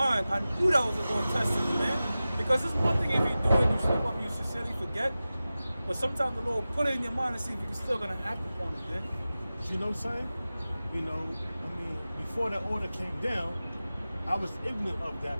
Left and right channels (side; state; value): both; inverted; correlation -0.96